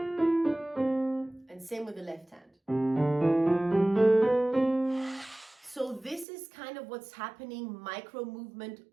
And same with the left hand. So this is kind of what's happening micro movement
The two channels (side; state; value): left; drops out; at 6.2 s